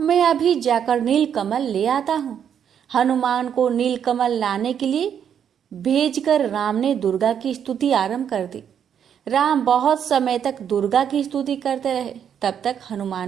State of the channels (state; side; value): quieter; left; 8.5 dB